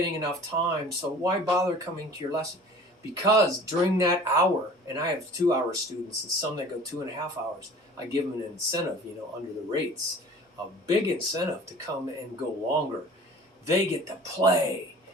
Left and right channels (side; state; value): both; normal; correlation 0.45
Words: enough time. So why bother coming to your lesson? Because during that hour, and I have 2-hour students and some that go 2.5 hours, I give them an incentive, under the rates, a big incentive to come and go longer. They get to play